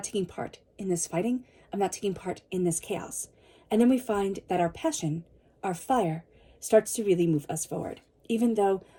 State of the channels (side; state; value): both; identical; correlation 1.00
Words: taking part in this fighting. I'm not taking part in this chaos. And then we find that our passion, our fire, starts to really move us forward. Even though